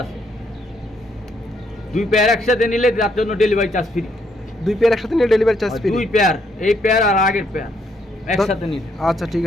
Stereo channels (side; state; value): both; normal; correlation 0.73